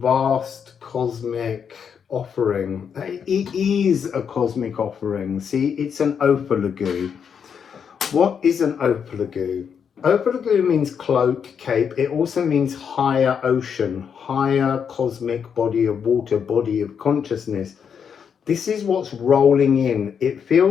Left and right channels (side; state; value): right; quieter; 7.2 dB